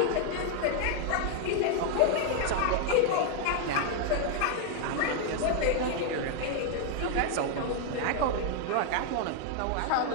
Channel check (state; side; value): different; both; correlation 0.00